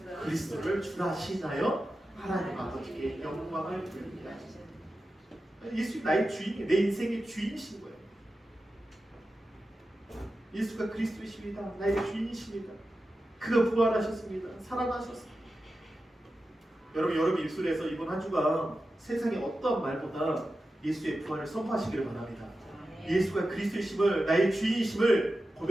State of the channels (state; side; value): normal; both; correlation 0.92